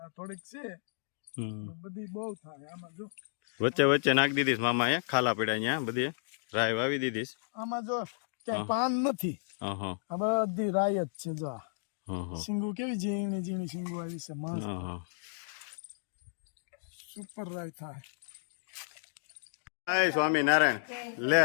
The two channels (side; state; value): right; silent; digital silence